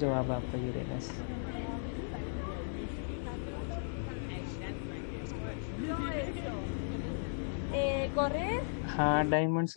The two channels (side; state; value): right; silent; digital silence